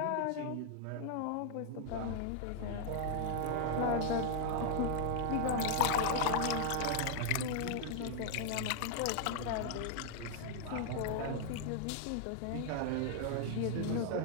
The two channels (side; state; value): both; different; correlation 0.00